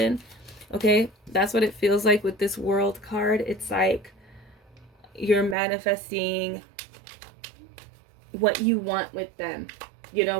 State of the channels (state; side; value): drops out; left; at 5.6 s